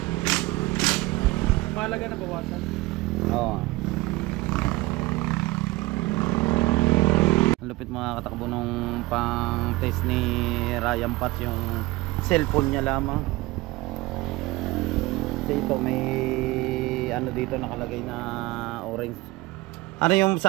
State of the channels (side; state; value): left; quieter; 20.4 dB